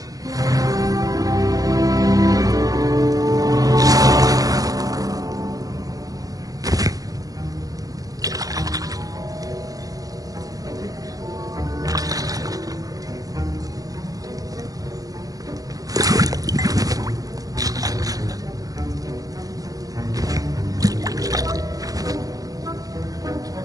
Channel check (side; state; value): left; late; 0.17 ms